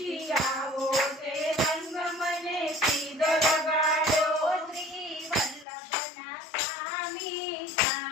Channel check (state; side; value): drops out; right; at 5.7 s